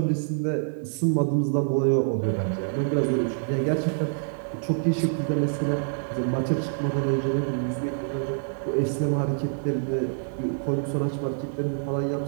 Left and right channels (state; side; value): silent; left; 61 dB below the other